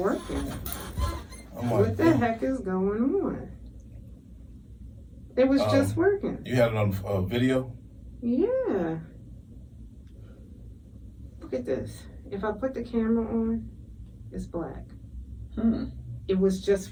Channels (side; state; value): both; identical; correlation 1.00